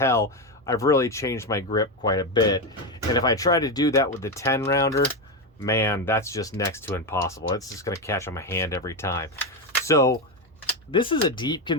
I've really changed my grip quite a bit. And if I try to do that with the 10-rounder, man, that's just next to impossible. It's just going to catch on my hand every time. So this is a deep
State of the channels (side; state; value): both; normal; correlation 0.11